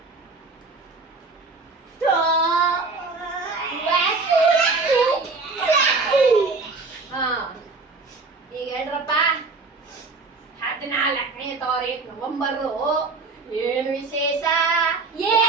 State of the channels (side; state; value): left; quieter; 3.9 dB